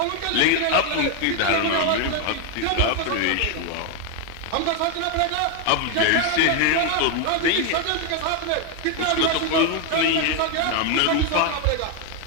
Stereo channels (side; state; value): both; different; correlation 0.01